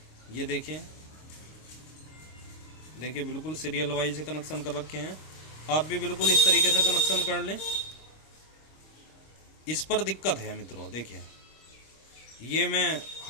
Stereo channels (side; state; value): right; late; 26 ms